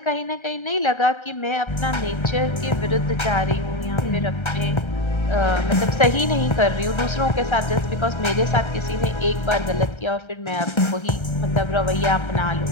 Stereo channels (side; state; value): right; late; 1.3 ms